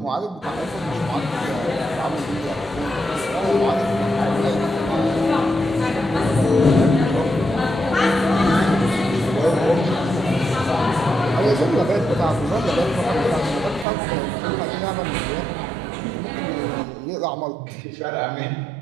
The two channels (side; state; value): left; drops out; at 13.9 s